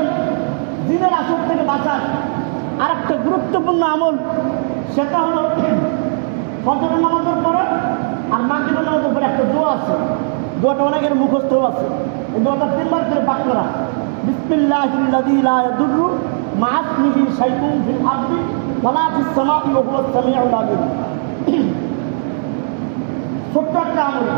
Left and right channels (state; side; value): silent; left; digital silence